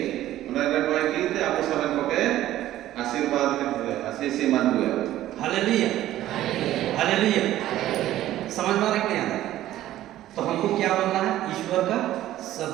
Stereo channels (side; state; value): left; quieter; 13.8 dB